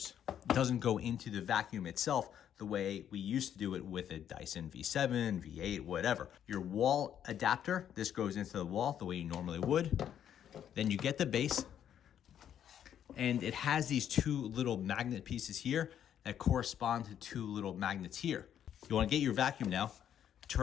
It doesn't go into the vacuum itself the way we used to do it with a Dyson V7, V8, whatever. Your wall adapter, this goes into the wall the way you normally would. Then you get the base, and it has these two little magnet pieces here that correspond to two little magnets here. You want to get your vacuum now,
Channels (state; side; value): quieter; right; 9.7 dB